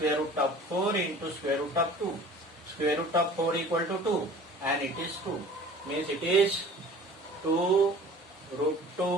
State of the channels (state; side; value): normal; both; correlation 0.45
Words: root of 4 into square root of 2. Square root of 4 equal to 2, and it is 2. Means it is 2